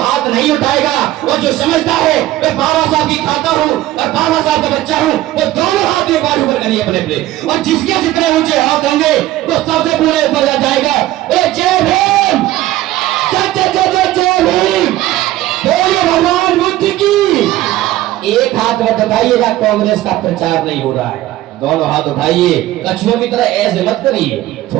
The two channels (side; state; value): left; quieter; 15.2 dB